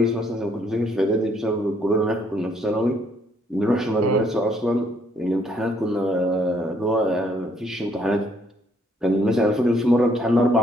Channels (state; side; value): normal; both; correlation 0.68